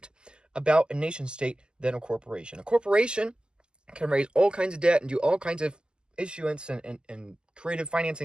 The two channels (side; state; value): left; late; 0.047 ms